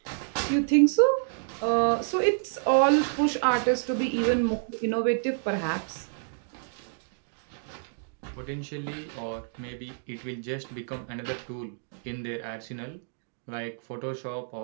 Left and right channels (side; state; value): left; silent; digital silence